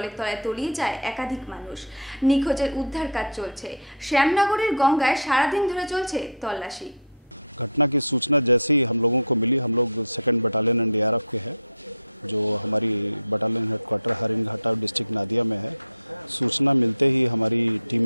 তলায় তলিয়ে যায় একাধিক মানুষ। নিখোঁজের উদ্ধার কাজ চলছে। শ্যামনগরের গঙ্গায় সারাদিন ধরে চলছে তল্লাশি। घटना की सूचना जैसे ही हम लोगों को मिली, हम लोग 2nd बटालियन NDRF के हैं, जो हमारी बटालियन हेडक्वार्टर हरिणघाटा डिस्ट्रिक्ट नादिया में है। सूचना मिलते ही हमारी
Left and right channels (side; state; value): both; inverted; correlation -0.32